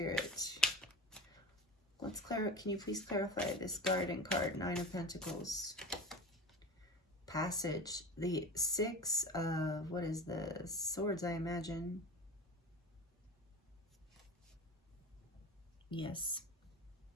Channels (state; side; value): normal; both; correlation 0.31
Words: Can you please clarify this garden card, 9 of Pentacles? Passage, the 6 of, what is this? Swords, I imagine. Yes.